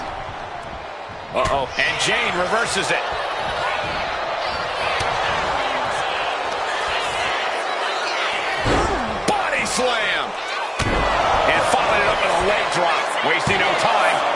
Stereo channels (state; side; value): identical; both; correlation 1.00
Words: Uh-oh. And Jane reverses it. Body slam. And following it up with a leg drop. Wasting no time.